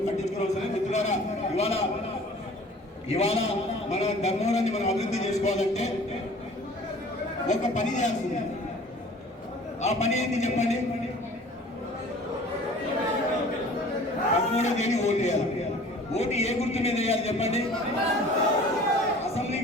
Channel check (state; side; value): normal; both; correlation 0.47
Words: పట్టించుకోవాల్సిన. మిత్రులారా, ఇవాళ మన ధర్మవరాన్ని మనం అభివృద్ధి చేసుకోవాలంటే ఒక పని చేయాల్సింది. ఆ పని ఏంటి చెప్పండి, 13వ తేదీ ఓటు వేయాలి. ఓటు ఏ గుర్తు మీద వేయాలి చెప్పండి,